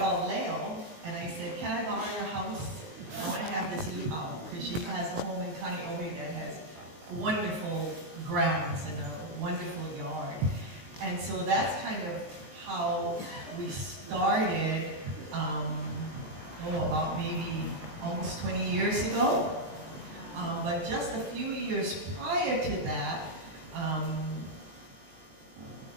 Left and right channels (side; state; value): left; late; 20 ms